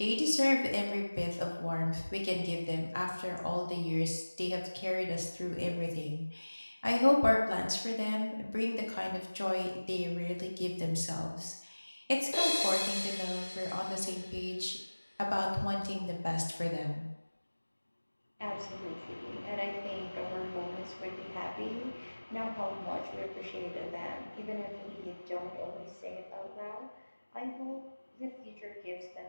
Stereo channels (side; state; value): both; inverted; correlation -1.00